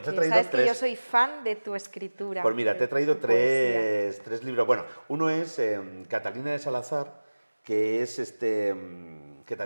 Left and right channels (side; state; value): both; inverted; correlation -1.00